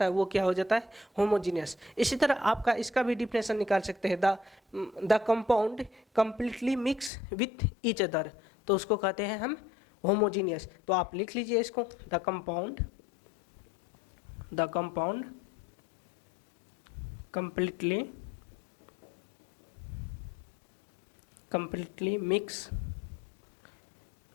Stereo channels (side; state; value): right; drops out; at 7.1 s